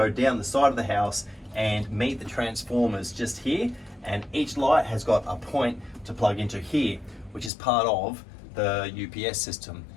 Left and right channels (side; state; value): right; drops out; at 7.5 s